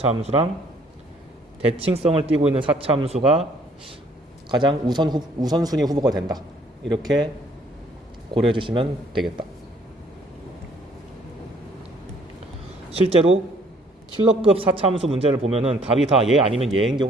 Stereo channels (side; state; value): both; normal; correlation 0.61